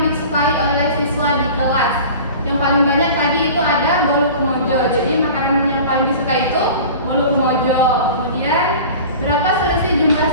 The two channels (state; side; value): inverted; both; correlation -0.39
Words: disukai oleh siswa di kelas? Yang paling banyak tadi itu ada bolu kemojo. Jadi makanan yang paling disukai itu bolu kemojo. Kemudian berapa selisih jumlah